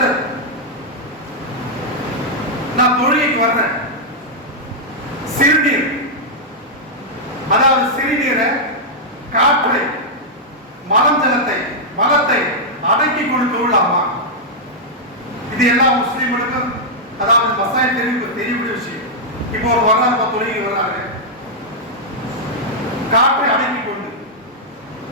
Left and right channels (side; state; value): both; normal; correlation -0.06